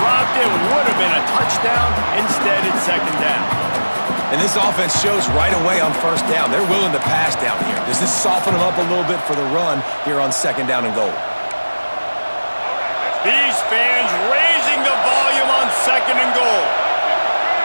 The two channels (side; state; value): both; inverted; correlation -1.00